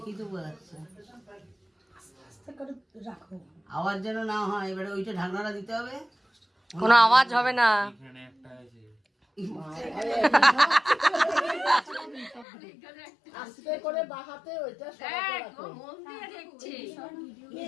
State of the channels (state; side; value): drops out; right; at 12.5 s